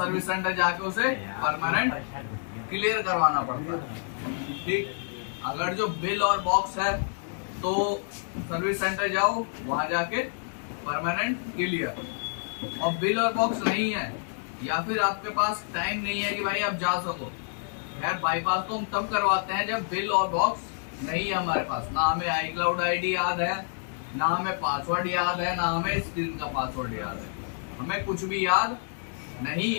सेंटर जाके उसे परमानेंट क्लियर करवाना पड़ता है, ठीक। अगर जो बिल और बॉक्स है तो सर्विस सेंटर जाओ, वहां जाके परमानेंट क्लियर। और बिल और बॉक्स नहीं है या फिर आपके पास टाइम नहीं है कि भाई आप जा सको, यार बाईपास तो हम तब करवाते हैं जब बिल और बॉक्स नहीं है हमारे पास, ना हमें आई क्लाउड आईडी याद है, ना हमें पासवर्ड याद है, ना हमें स्क्रीन का पासवर्ड याद है, हमें कुछ भी याद नहीं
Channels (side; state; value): right; silent; digital silence